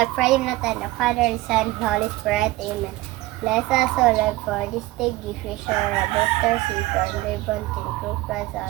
pray na tayo na Father, Son, Holy Spirit. Amen. Bless us, O Lord, for this day. Give you sure a better safe and ribbon to improve us,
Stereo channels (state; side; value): quieter; left; 18.5 dB